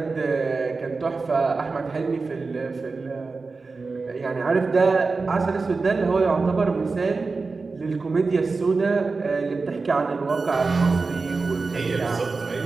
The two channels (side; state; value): left; quieter; 4.1 dB